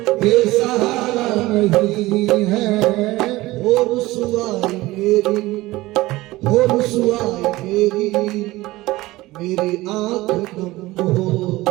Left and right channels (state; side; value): quieter; left; 18.9 dB